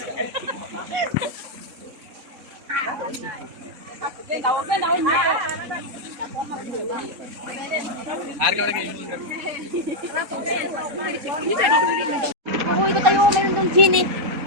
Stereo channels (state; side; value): late; left; 3.7 ms